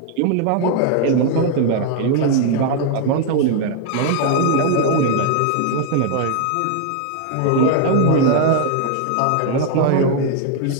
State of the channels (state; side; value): different; both; correlation 0.00